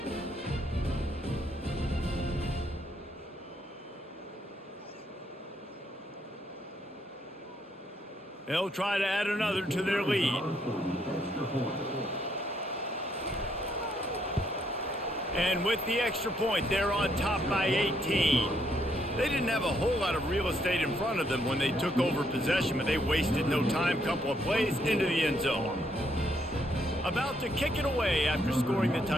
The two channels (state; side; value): normal; both; correlation 0.73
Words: They'll try to add another to their lead. And with the extra point, they're on top by 18. They didn't have a whole lot of real estate in front of them when they took over possession, but they wasted no time. Couple of plays into the end zone. About to kick it away after scoring the